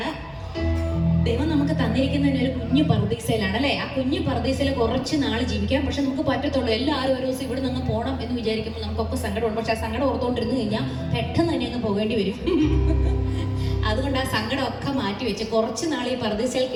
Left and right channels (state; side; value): identical; both; correlation 1.00